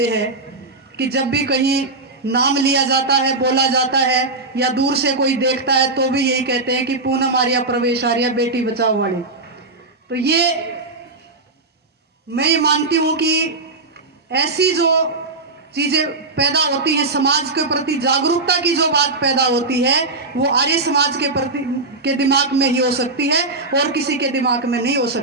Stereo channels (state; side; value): quieter; left; 3.4 dB